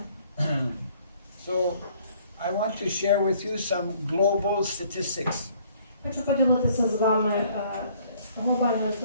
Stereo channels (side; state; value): both; inverted; correlation -0.60